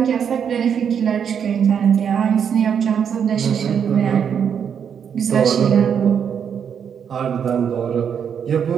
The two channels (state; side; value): quieter; left; 7.7 dB